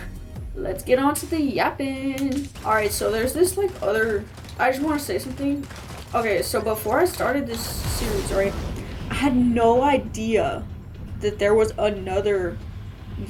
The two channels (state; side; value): identical; both; correlation 1.00